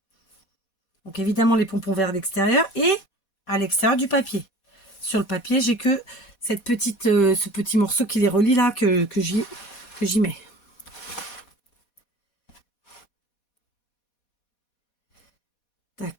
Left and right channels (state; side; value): late; right; 4.2 ms